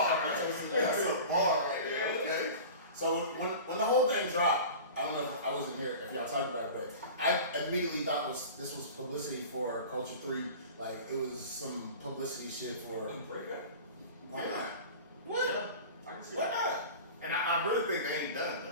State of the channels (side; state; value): both; inverted; correlation -0.36